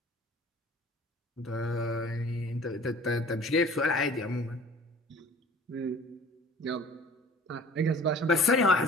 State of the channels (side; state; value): both; normal; correlation 0.47